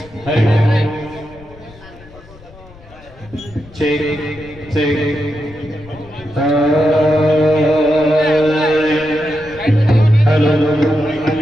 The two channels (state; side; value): noise; left; rumble, 22 dB below the sound